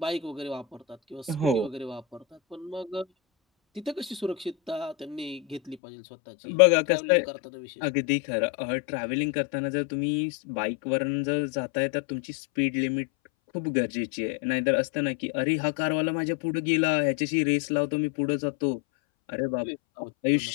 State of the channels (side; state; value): right; drops out; at 5.8 s